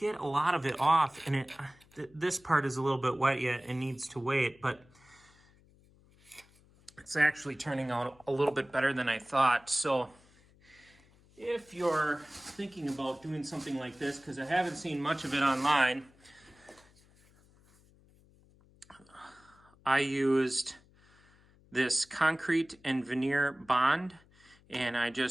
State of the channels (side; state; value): left; noise; hum, 29 dB below the sound